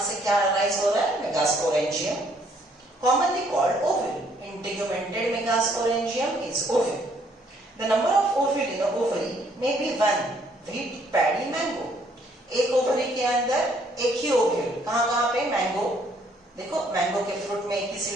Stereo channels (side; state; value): both; normal; correlation 0.66